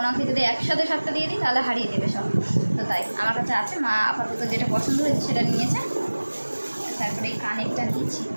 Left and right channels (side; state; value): both; inverted; correlation -1.00